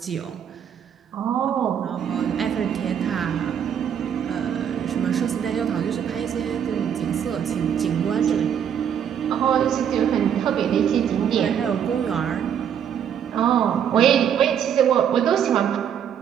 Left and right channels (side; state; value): left; quieter; 8.6 dB